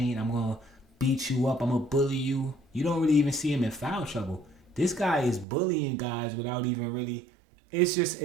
I'm going to beat you up, I'm going to bully you. You don't really even see him in foul trouble. This guy is bullying guys without even really... It's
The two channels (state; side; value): drops out; left; at 5.5 s